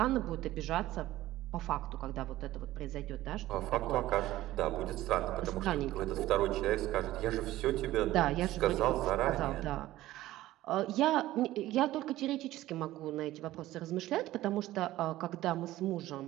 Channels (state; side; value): quieter; left; 15.6 dB